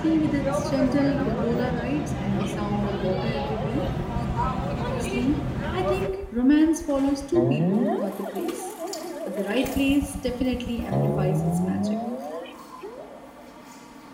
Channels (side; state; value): both; identical; correlation 1.00